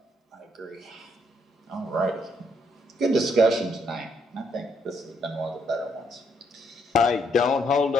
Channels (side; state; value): both; normal; correlation 0.72